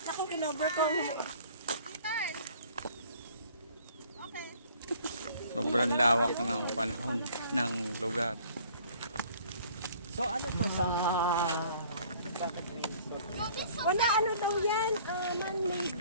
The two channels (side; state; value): both; inverted; correlation -0.54